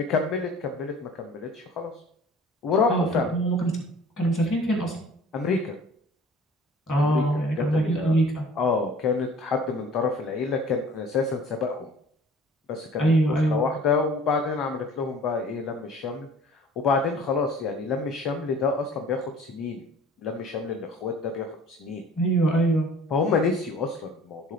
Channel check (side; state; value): both; normal; correlation 0.49